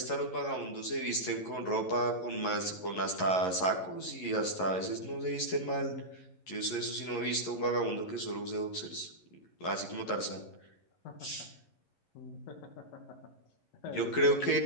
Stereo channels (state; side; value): late; right; 11 ms